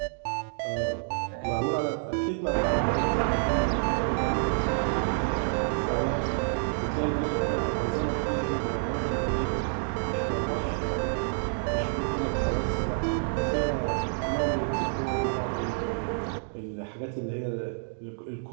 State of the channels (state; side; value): silent; left; digital silence